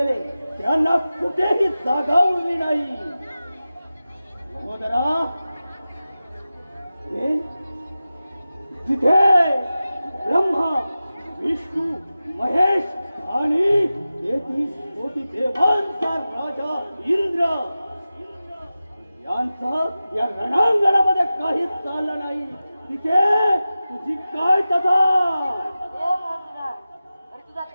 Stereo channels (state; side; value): inverted; both; correlation -0.95